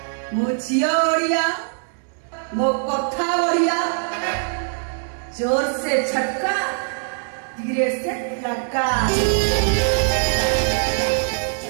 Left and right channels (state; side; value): silent; left; 60 dB below the other